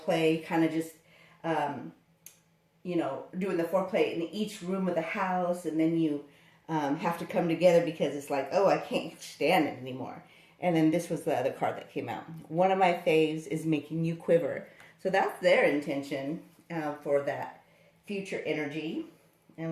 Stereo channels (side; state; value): both; identical; correlation 1.00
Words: kind of just, you know, doing the foreplay in each room of the house. And then you have to come together because it's like, oh, I can't stand it anymore. And then this was the other card that came out. One of my faves is making you quiver. So that's their intention for that future energy.